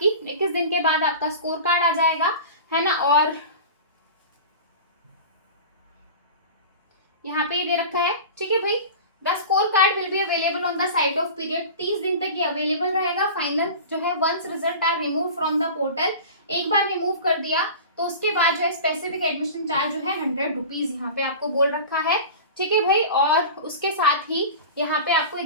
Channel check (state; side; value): inverted; both; correlation -0.34